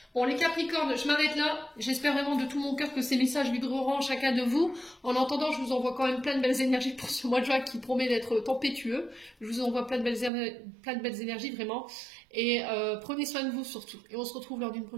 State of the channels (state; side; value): drops out; left; at 10.3 s